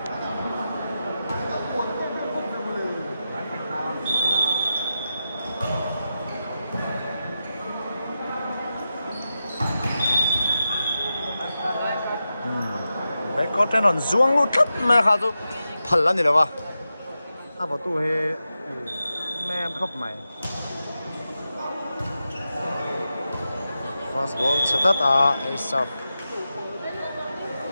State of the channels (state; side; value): inverted; both; correlation -0.90